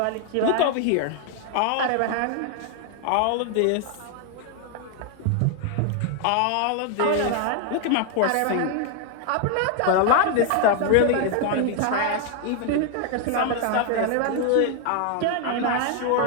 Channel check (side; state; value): both; different; correlation 0.00